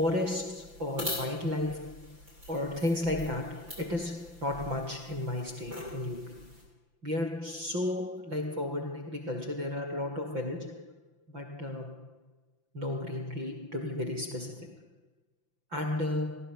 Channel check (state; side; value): late; left; 5.9 ms